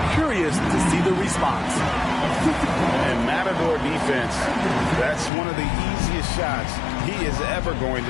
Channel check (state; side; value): drops out; right; at 5.3 s